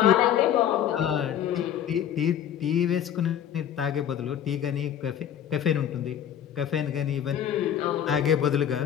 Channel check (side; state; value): right; quieter; 9.9 dB